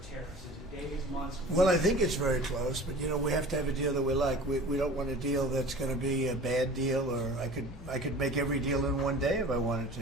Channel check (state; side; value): normal; both; correlation 0.41